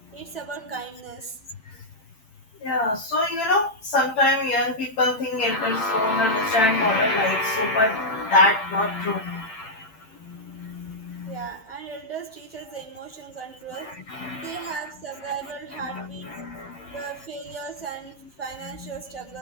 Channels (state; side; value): late; right; 9.2 ms